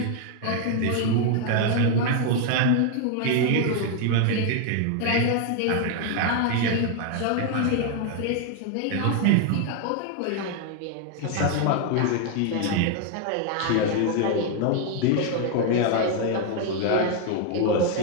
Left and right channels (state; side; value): different; both; correlation 0.01